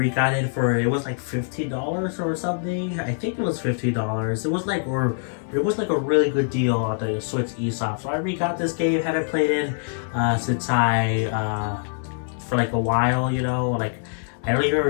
it for, it was like $15 or something. I think it was $15. It was like, a really good deal on the Switch eShop. So I re-got this game. Haven't played it since for like a while, you know, like. I don't even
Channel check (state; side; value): silent; right; digital silence